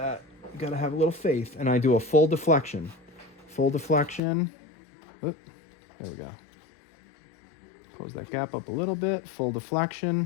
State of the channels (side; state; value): right; drops out; at 4.2 s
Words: You gotta have a little faith. And I do a full deflection. Full deflection. Oop, there we go. Close that gap up a little bit. Full